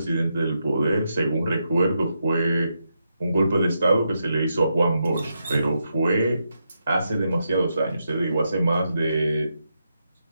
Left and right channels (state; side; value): inverted; both; correlation -0.83